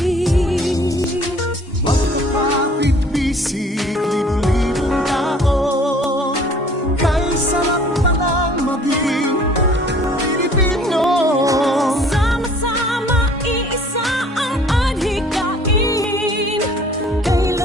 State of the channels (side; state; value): both; normal; correlation 0.53